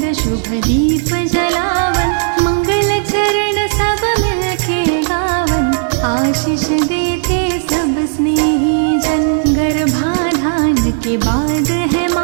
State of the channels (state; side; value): silent; left; digital silence